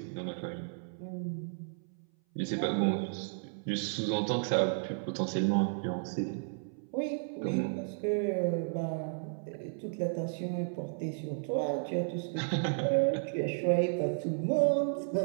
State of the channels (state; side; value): silent; left; 56 dB below the other